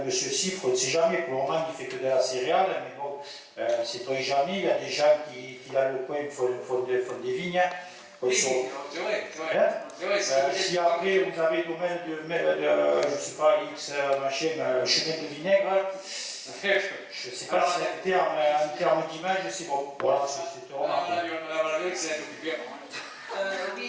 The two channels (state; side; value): identical; both; correlation 1.00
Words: M. Siffre, on ne sait jamais, pour le moment il ne fait que de la céréale, mais bon, c'est pas jamais, il y a des gens qui dans le coin font des vignes. Oui, c'est vrai, c'est vrai. Si après vous avez domaine de je ne sais pas, X machin, chemin de vinaigre, je ne sais pas si en termes d'image c'est bon. Voilà, c'est remarqué.